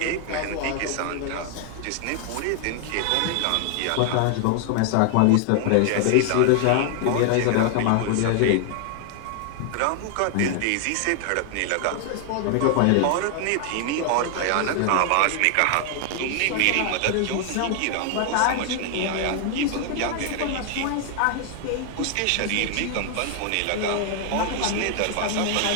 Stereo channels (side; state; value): both; different; correlation 0.00